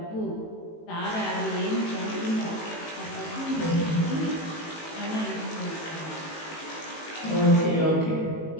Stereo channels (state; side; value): late; right; 18 ms